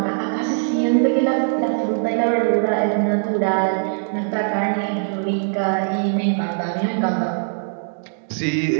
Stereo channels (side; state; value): left; silent; digital silence